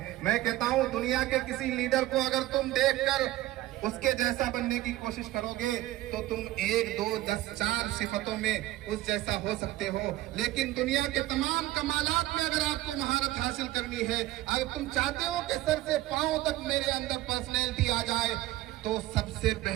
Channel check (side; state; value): left; quieter; 16.5 dB